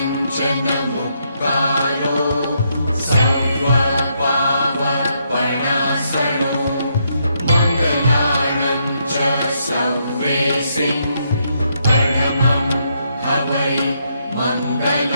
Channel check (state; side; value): inverted; both; correlation -0.77